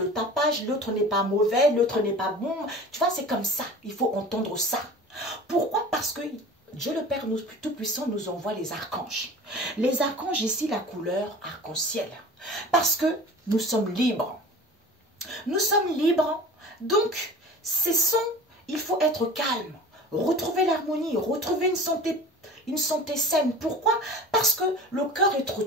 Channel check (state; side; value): normal; both; correlation 0.39